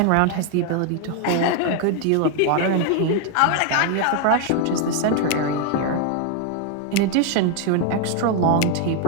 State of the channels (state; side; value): different; both; correlation 0.00